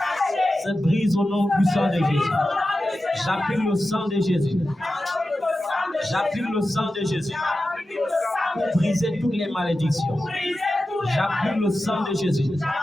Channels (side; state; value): both; normal; correlation 0.93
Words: se brise au nom puissant de Jésus. J'applique le sang de Jésus. J'applique le sang de Jésus pour briser toutes les malédictions. J'applique le sang de Jésus